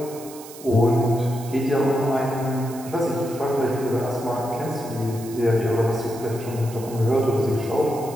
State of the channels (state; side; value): noise; right; hiss, 17 dB below the sound